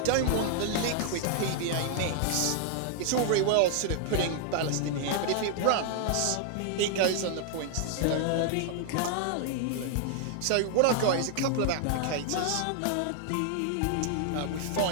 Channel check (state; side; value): different; both; correlation 0.00